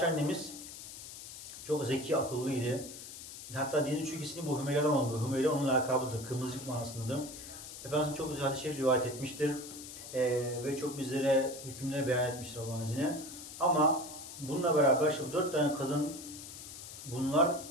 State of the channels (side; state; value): left; noise; hiss, 12 dB below the sound